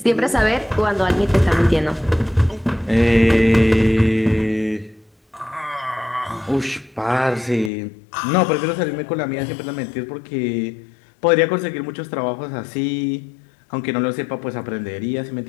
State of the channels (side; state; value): right; drops out; at 7.7 s